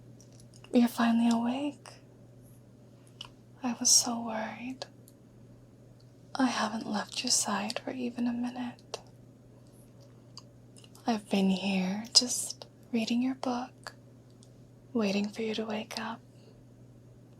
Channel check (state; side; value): identical; both; correlation 1.00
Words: You're finally awake. I was so worried. I haven't left your side for even a minute. I've been here just reading your book, waiting for you to wake up.